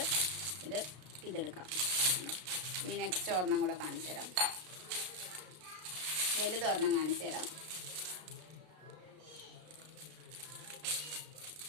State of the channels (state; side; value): late; left; 33 ms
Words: ഇതെടുക്കാം. ഇനി നെക്സ്റ്റ് ഒരെണ്ണം കൂടെ കാണിച്ചു തരാം. വലുതൊരെണ്ണം കാണിച്ചു തരാം.